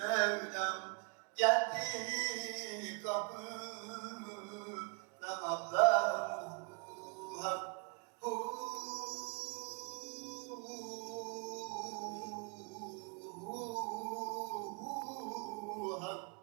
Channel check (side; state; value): left; quieter; 33.8 dB